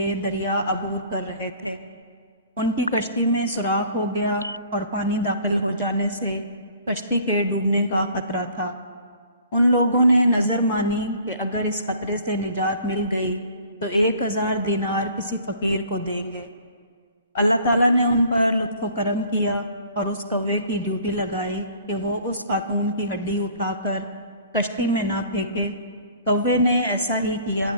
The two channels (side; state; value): both; inverted; correlation -0.52